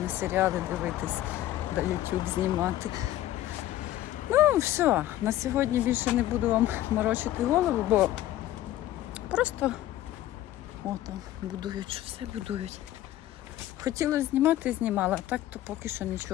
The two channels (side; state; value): right; quieter; 14.0 dB